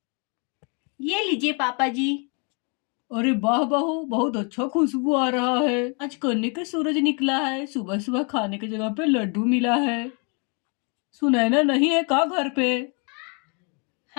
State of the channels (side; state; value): right; quieter; 35.5 dB